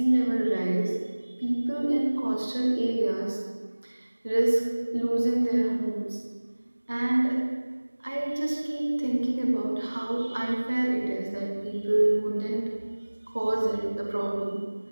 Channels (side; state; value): both; inverted; correlation -1.00